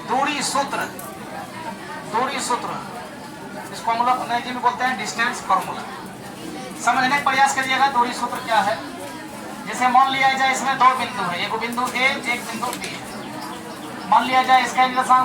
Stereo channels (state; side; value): identical; both; correlation 1.00